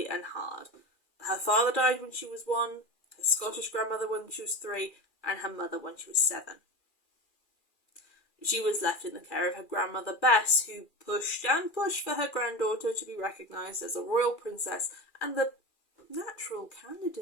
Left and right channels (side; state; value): right; late; 2.4 ms